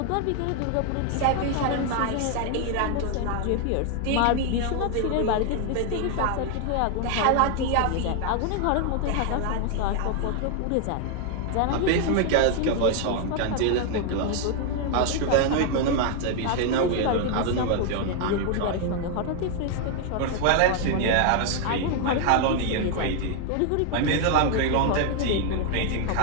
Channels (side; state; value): both; different; correlation 0.00